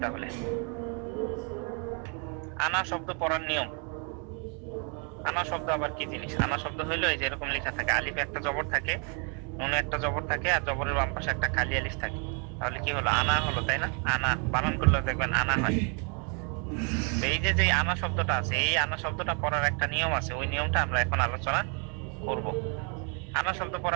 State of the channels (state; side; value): quieter; left; 37.4 dB